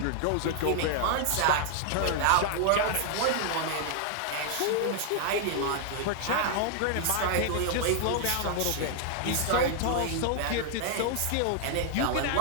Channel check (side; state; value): both; different; correlation 0.00